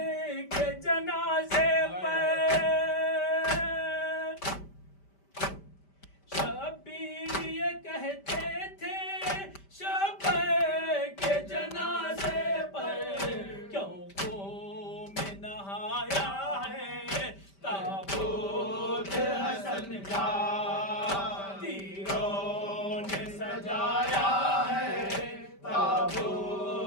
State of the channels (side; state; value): right; late; 5.1 ms